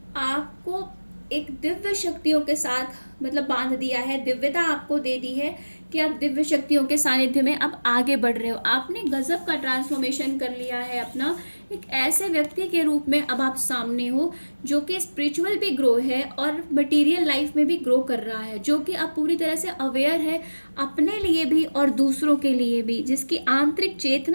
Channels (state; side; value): inverted; both; correlation -1.00